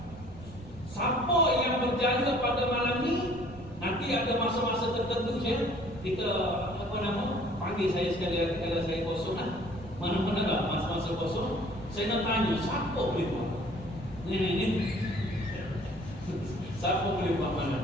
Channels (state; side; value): noise; right; rumble, 17 dB below the sound